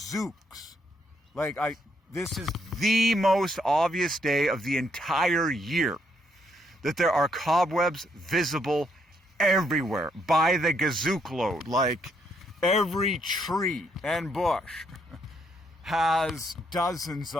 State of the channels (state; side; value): normal; both; correlation 0.73